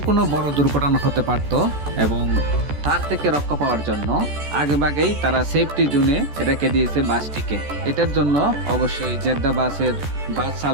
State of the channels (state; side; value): late; left; 14 ms